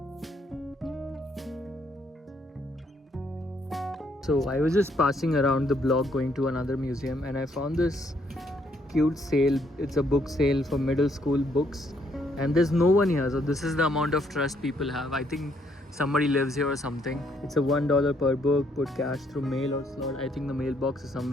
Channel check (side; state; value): both; normal; correlation 0.70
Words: So I was just passing around the block going to another museum, and I found this cute sale. It's a book sale for middle school books, and there's no one here, so this is the amount of trust people have. I think somebody lives here or something. It's a $1 per book. Put cash through mail or slot. I think the mailbox is